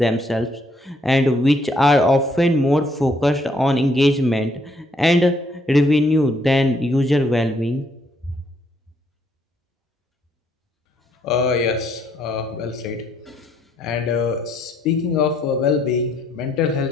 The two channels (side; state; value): both; normal; correlation 0.70